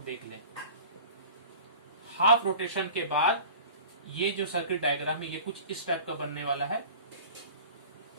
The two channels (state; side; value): inverted; both; correlation -0.41